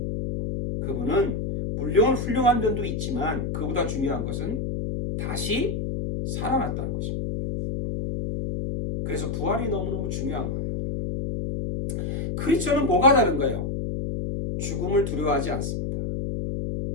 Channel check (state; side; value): noise; left; hum, 2 dB below the sound